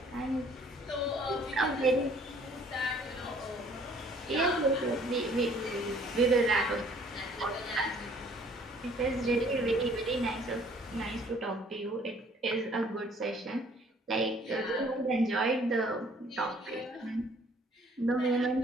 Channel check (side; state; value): both; normal; correlation 0.58